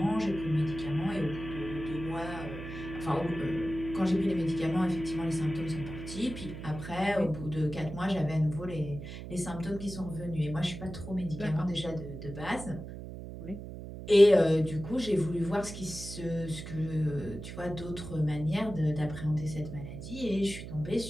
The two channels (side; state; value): right; noise; hum, 10 dB below the sound